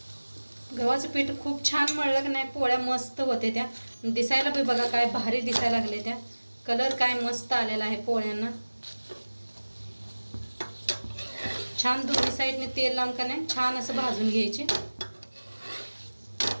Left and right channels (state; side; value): inverted; both; correlation -1.00